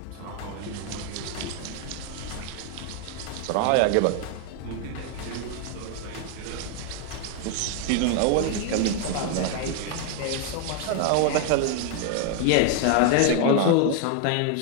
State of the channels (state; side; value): different; both; correlation 0.00